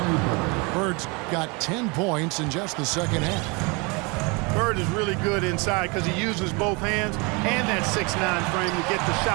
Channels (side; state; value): left; quieter; 28.9 dB